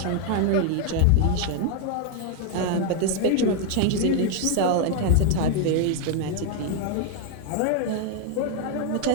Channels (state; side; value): different; both; correlation 0.01